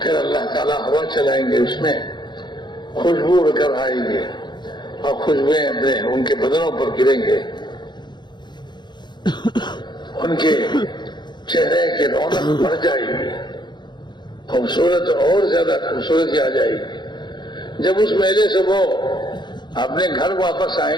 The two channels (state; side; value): late; right; 0.21 ms